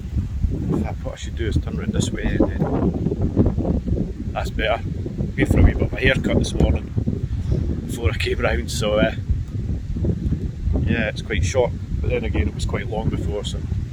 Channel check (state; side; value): identical; both; correlation 1.00